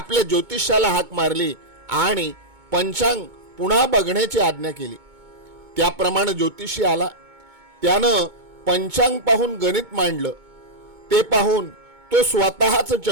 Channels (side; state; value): left; late; 2.2 ms